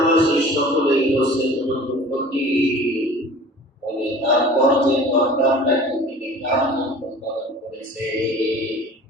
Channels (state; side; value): normal; both; correlation 0.43